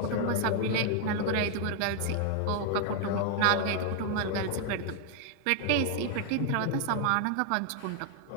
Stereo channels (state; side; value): different; both; correlation 0.00